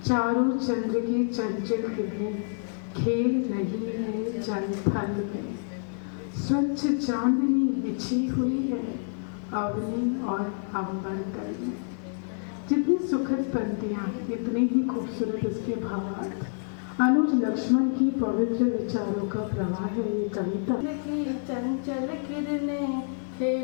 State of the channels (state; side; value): silent; right; 59 dB below the other